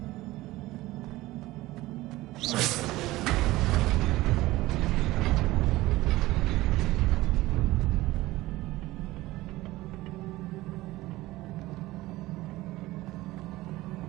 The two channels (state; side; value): quieter; left; 18.1 dB